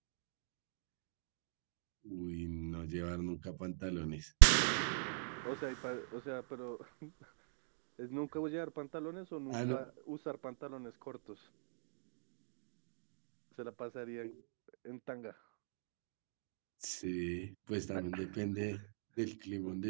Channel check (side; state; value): left; silent; digital silence